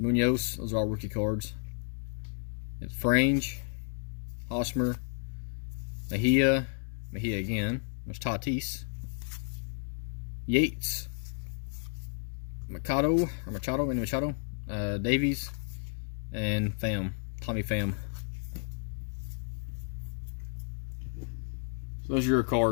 Those are all rookie cards. It's Frange, Hosmer, Mejia again. There's Tatis, Yates, Machado, Davies, and Tommy Pham. So those are your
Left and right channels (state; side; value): silent; right; 56 dB below the other